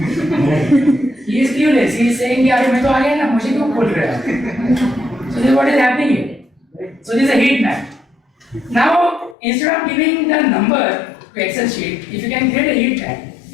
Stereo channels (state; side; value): drops out; right; at 9.3 s